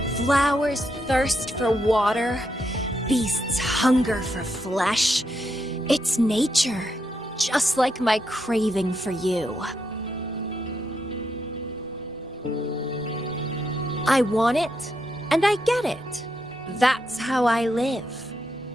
Flowers thirst for water, beasts hunger for flesh. It's nature, just like my craving for you. I want it, and I get it. That's how I live.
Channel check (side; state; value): both; normal; correlation 0.81